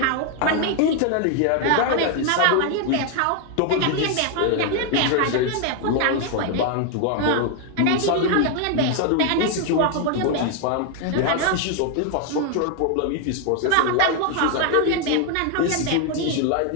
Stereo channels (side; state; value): both; different; correlation 0.01